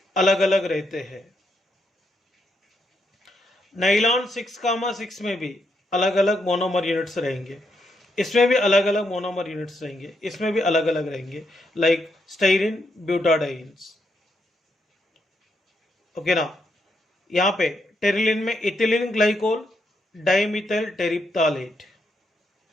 अलग अलग रहते हैं। नाइलॉन 6,6 में भी अलग अलग मोनोमर यूनिट्स रहेंगे। इसमें भी अलग अलग मोनोमर यूनिट्स रहेंगे। इसमें भी अलग अलग रहेंगे, लाइक स्टाइरिन ब्यूटाडाइन्स। ओके ना। यहाँ पे टेरिलिन में इथिलीन ग्लाइकोल, डाइमिथाइल टेरिप्थालेट,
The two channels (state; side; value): normal; both; correlation 0.79